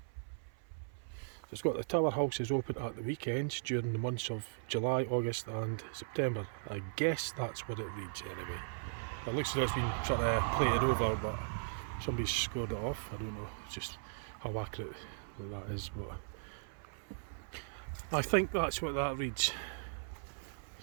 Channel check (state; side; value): silent; left; 53 dB below the other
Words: It's got the tower house is open at the weekends during the months of July, August and September. I guess that's what it reads anyway. It looks as though it's been sort of plated over, but somebody's scored it off. I don't know just how accurate that is, but I think that's what that reads.